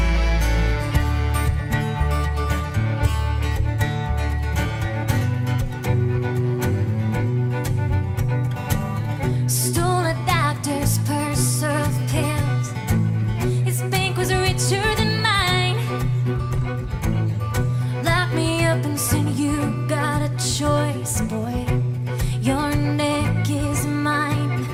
Stole a doctor's purse of pills. His bank was richer than mine. Lock me up and said, you got a choice, boy. Your neck is mine.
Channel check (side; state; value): both; identical; correlation 1.00